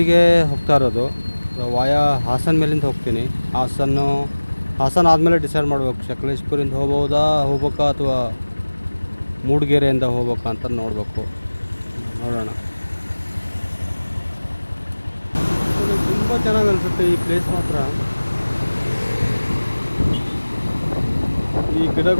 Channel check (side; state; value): both; inverted; correlation -1.00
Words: ಹೋಗ್ತಾ ಇರೋದು. ವಾಯಾ ಹಾಸನ ಮೇಲಿಂದ ಹೋಗ್ತೀನಿ. ಹಾಸನ ಆದಮೇಲೆ ಡಿಸೈಡ್ ಮಾಡಬೇಕು ಸಕಲೇಶ್ಪುರಿಂದ ಹೋಗ್ಬೇಕಾ ಅಥವಾ ಮೂಡಿಗೆರೆಯಿಂದ ಹೋಗ್ಬೇಕಾ ಅಂತ ನೋಡಬೇಕು. ನೋಡೋಣ. ತುಂಬ ಚೆನ್ನಾಗಿ ಅನಿಸುತ್ತೆ ಈ ಪ್ಲೇಸ್ ಮಾತ್ರ. ಈ